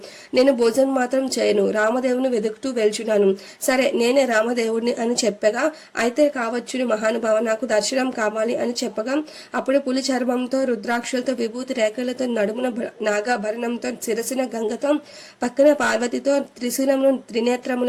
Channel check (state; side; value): identical; both; correlation 1.00